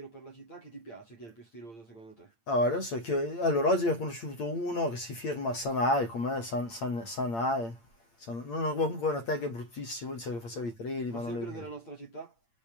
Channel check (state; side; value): late; right; 8.8 ms